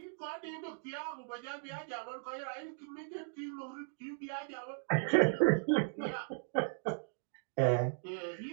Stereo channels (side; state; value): left; silent; digital silence